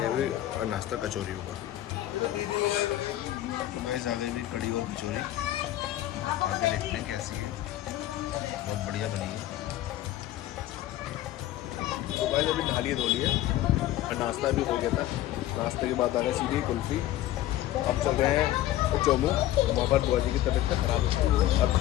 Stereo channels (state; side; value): quieter; right; 14.2 dB